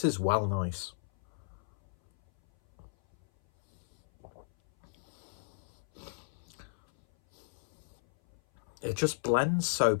is well nice. It just blends so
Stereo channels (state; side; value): silent; right; 55 dB below the other